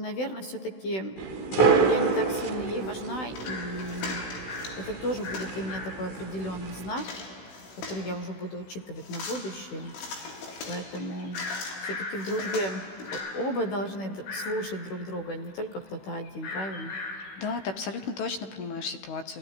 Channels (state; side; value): late; right; 16 ms